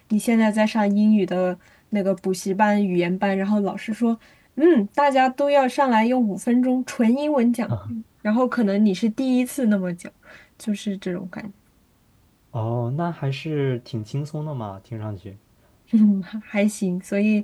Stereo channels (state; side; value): identical; both; correlation 1.00